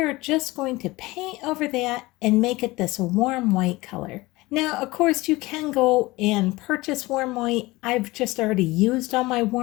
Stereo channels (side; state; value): right; quieter; 20.7 dB